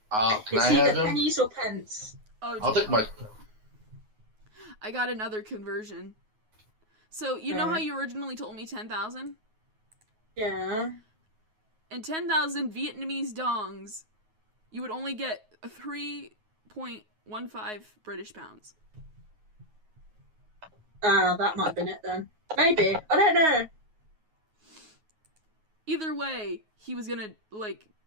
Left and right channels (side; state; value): left; late; 9.4 ms